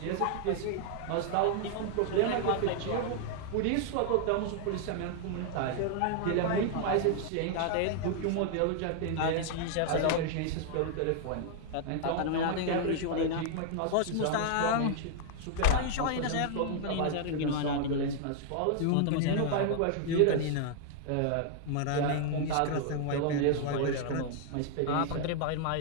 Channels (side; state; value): both; different; correlation 0.00